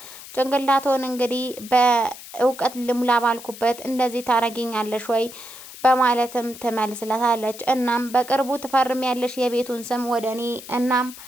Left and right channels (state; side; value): noise; left; hiss, 15 dB below the sound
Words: ጭንቅላቶን እንግዲህ በእውቀት ልሙላ ባልኩበት እንደዚህ ታረጊኛለሽ ወይ በማለትም ትመልስለታለች። እናም በቅርቡ ትፈርሚያለሽ የቤቱን ስም ወደ እኔ፣ እናም